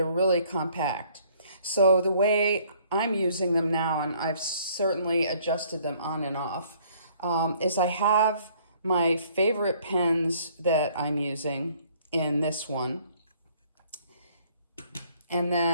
really compact. So the way I'm using them now, and I've certainly adjusted them on and off, is I have my favorite pens that I'm using in this one, and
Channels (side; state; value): both; inverted; correlation -0.61